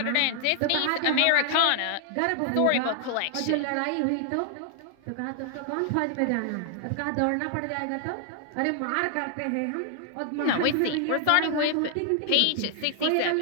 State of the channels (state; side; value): different; both; correlation 0.00